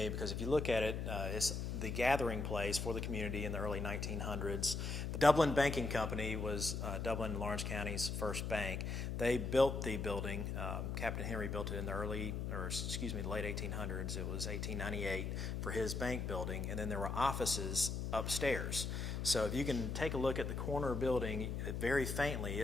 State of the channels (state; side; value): noise; left; hum, 2 dB below the sound